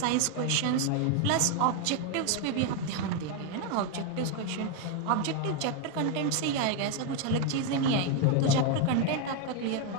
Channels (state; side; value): different; both; correlation 0.01